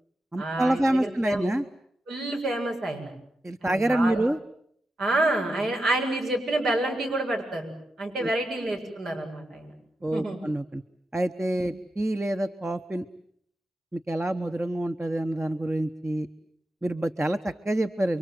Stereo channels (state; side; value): normal; both; correlation 0.89